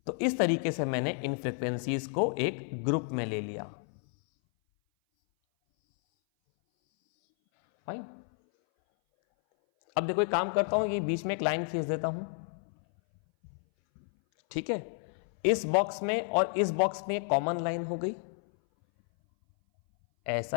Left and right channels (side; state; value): right; silent; 57 dB below the other